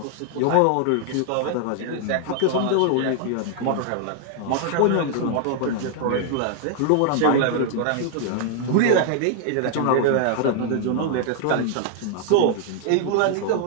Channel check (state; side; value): different; both; correlation 0.00